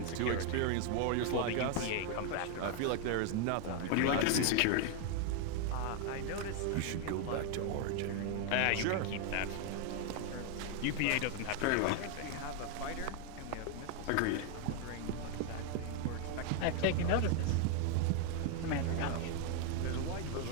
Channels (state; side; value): different; both; correlation 0.00